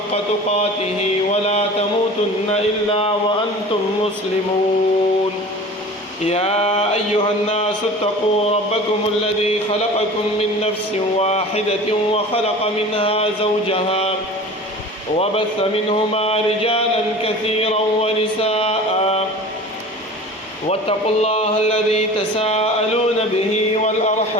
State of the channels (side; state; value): both; normal; correlation 0.39